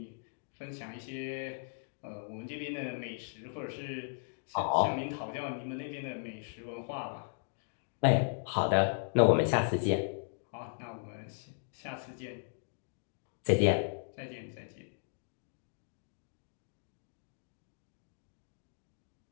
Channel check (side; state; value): right; silent; digital silence